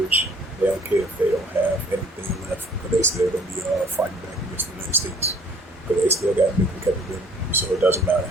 They don't care if they don't have anything left, because they still going to be fighting back against the United States, because they still got nuclear capability. So it doesn't matter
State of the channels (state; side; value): normal; both; correlation 0.57